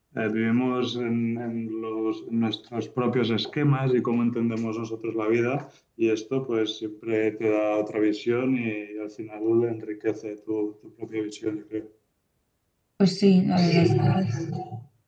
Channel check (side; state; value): both; identical; correlation 1.00